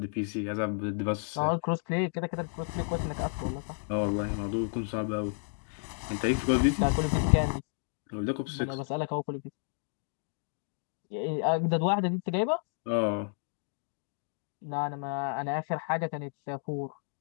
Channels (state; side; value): silent; right; digital silence